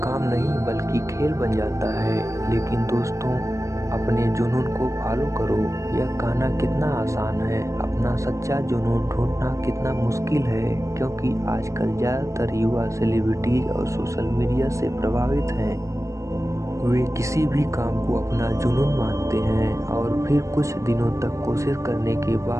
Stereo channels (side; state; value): left; late; 0.15 ms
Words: नहीं बल्कि खेल बन जाता है। लेकिन दोस्तों, अपने जुनून को फॉलो करो। यह कहना कितना आसान है, अपना सच्चा जुनून ढूंढना कितना मुश्किल है, क्योंकि आजकल ज़्यादातर युवा सेलिब्रिटीज और सोशल मीडिया से प्रभावित हैं। वे किसी भी काम को अपना जुनून मानते हैं और फिर कुछ दिनों तक कोशिश करने के